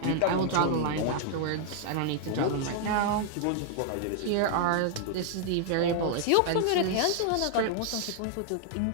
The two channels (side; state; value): both; different; correlation 0.00